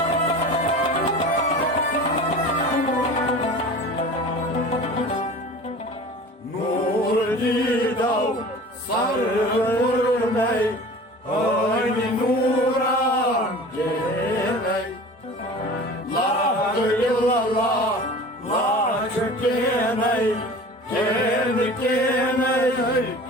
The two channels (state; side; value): normal; both; correlation 0.39